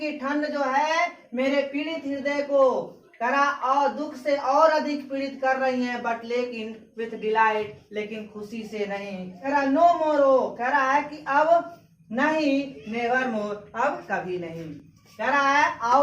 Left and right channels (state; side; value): identical; both; correlation 1.00